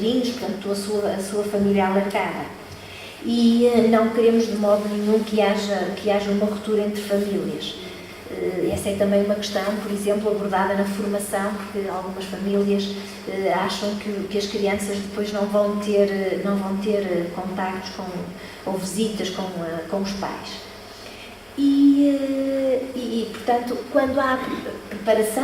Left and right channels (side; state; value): both; identical; correlation 1.00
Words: portanto, a sua família alargada. E não queremos de modo nenhum que haja uma ruptura entre famílias. Essa é também uma questão, por exemplo, abordada na formação, porque algumas famílias acham que as crianças depois não vão ter contactos ou visitas com os pais. E, portanto, quando há